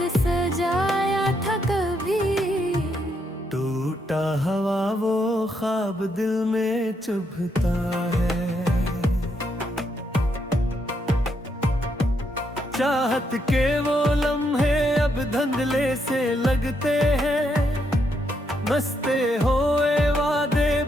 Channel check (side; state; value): both; normal; correlation 0.77